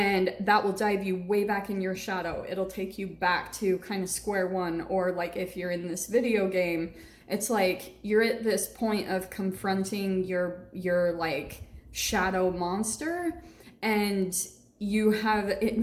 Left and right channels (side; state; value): both; identical; correlation 1.00